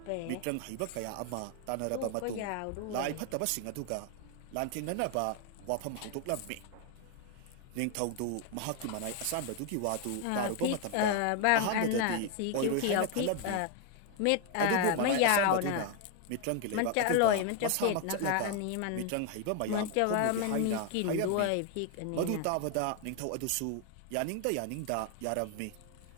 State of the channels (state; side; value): different; both; correlation 0.01